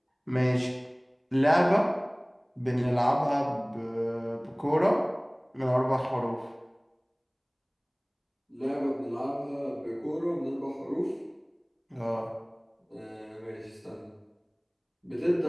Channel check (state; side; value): identical; both; correlation 1.00